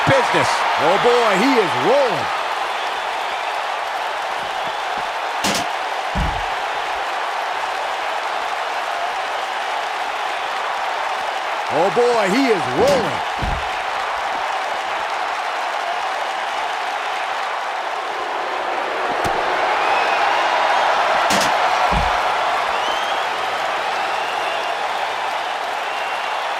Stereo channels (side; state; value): both; identical; correlation 1.00